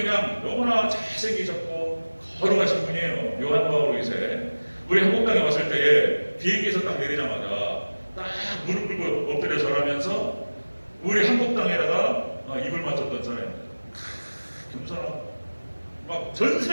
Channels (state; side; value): inverted; both; correlation -1.00